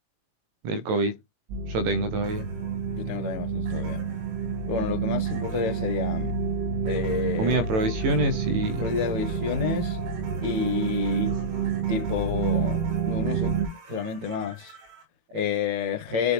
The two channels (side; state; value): left; late; 18 ms